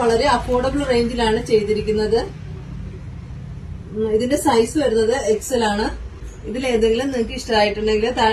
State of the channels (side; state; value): both; identical; correlation 1.00